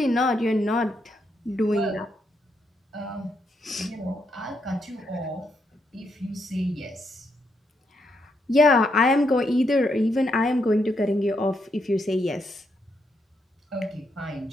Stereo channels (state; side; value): normal; both; correlation 0.78